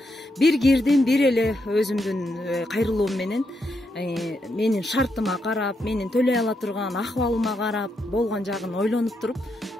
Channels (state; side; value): normal; both; correlation 0.81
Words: Бир кирдим, бир эле өзүмдүн кайрылуум менен менин шартыма карап, менин төлөй ала турган акыбалыма карап, болгон жагын ойлонуп туруп,